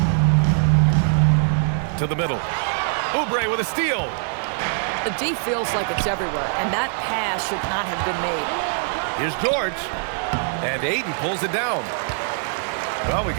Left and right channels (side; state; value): left; silent; 64 dB below the other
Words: To the middle. Oubre with a steal. The D feels like it's everywhere, and that pass should not have been made. Here's George. And Ayton pulls it down. Well, we